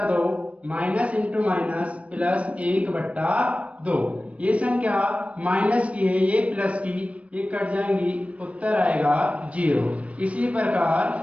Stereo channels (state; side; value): late; left; 0.064 ms